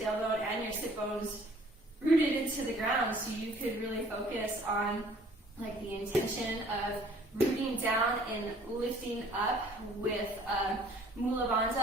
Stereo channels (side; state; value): both; normal; correlation 0.55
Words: and your sit bones rooted into the ground, so you could really focus on like the intention of rooting down and lifting up with Mula